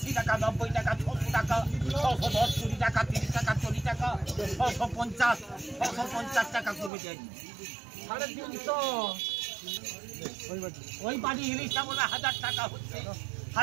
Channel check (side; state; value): left; drops out; at 6.9 s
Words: টাকা, 90 টাকা, 600 টাকা, 610, 20 টাকা, 30 টাকা, 40 টাকা, 650, 650 টাকা করবে ড্যাডি। 350 ওই বাড়ি ইলিশটা বলে 1000 টাকা হচ্ছে,